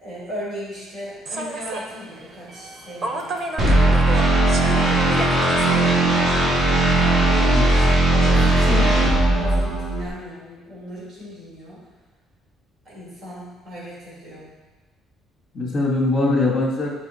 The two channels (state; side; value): normal; both; correlation 0.73